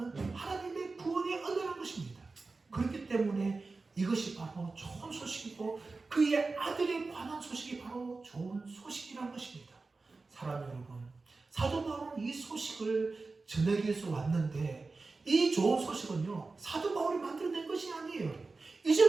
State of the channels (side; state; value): left; quieter; 3.8 dB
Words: 하나님의 구원의 은혜라는 것입니다. 그렇기 때문에 이것이 바로 좋은 소식이고 그의 아들에 관한 소식이 바로 좋은 소식이라는 것입니다. 사랑 여러분, 사도 바울은 이 소식을 전하기 위해서 왔는데 이 좋은 소식은요, 사도 바울이 만들어낸 것이 아니에요.